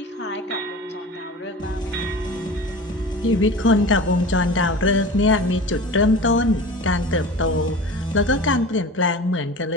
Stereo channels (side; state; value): both; normal; correlation 0.35